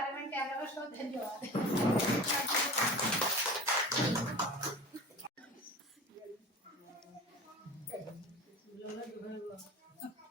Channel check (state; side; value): normal; both; correlation 0.35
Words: में क्या करूँ, सो धन्यवाद।